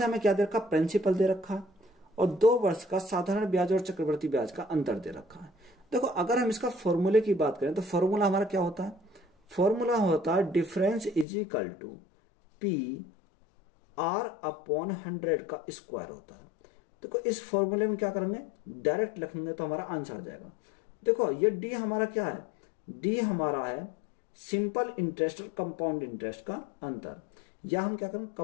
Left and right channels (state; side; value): drops out; right; at 11.2 s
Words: हमें क्या दे रखा, प्रिंसिपल दे रखा और 2 वर्ष का साधारण ब्याज और चक्रवर्ती ब्याज का अंतर दे रखा है। देखो अगर हम इसका फॉर्मूले की बात करें तो फॉर्मूला हमारा क्या होता है, फॉर्मूला होता है difference is equal to P R upon 100 का स्क्वायर होता है। देखो इस फॉर्मूले में क्या करेंगे डायरेक्ट लिखेंगे तो हमारा आंसर आ जाएगा। देखो ये डी हमारा क्या है, डी हमारा है सिंपल इंटरेस्ट और कंपाउंड इंटरेस्ट का अंतर, या हम क्या करें